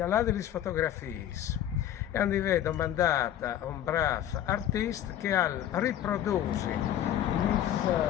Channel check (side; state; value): right; quieter; 11.3 dB